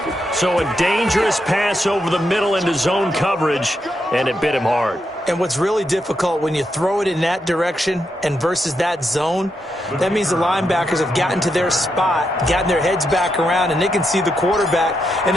So a dangerous pass over the middle into zone coverage, and it bit him hard. And what's really difficult when you throw it in that direction and versus that zone, that means the linebackers have gotten to their spot, gotten their heads back around, and they can see the quarterback and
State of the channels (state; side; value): normal; both; correlation 0.83